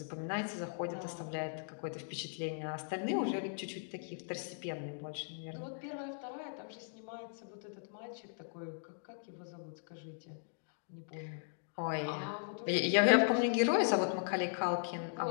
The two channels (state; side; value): silent; right; digital silence